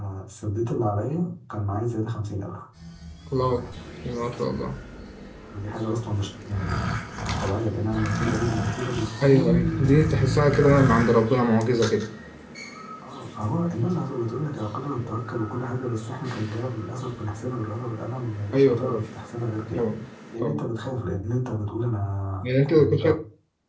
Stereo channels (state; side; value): identical; both; correlation 1.00